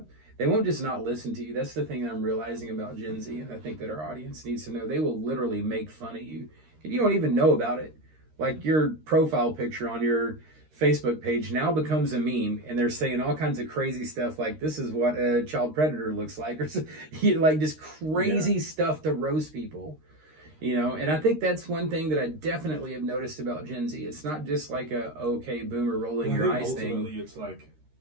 They won't just not listen to you. That's the thing that I'm realizing about Gen Z, and I think that our audience needs to know. They will literally make fun of you. And you don't even know about it. Like, your profile picture on your Facebook page now becomes a meme, and they're saying all kinds of crazy stuff like, this is what a child predator looks like, or like just crazy stuff to roast people. You know, and I think that's one thing that I definitely have noticed about Gen Z. It's not just like a, okay, boomer rolling your eyes thing. It's like...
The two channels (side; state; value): left; late; 13 ms